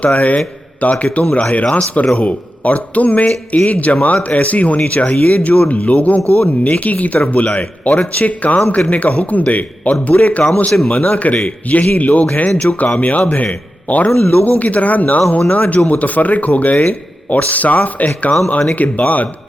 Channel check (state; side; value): normal; both; correlation 0.91